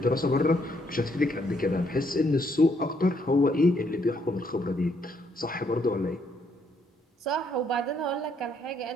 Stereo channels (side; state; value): both; normal; correlation 0.71